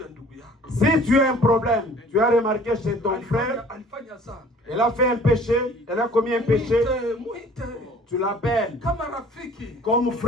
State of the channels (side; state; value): both; normal; correlation 0.51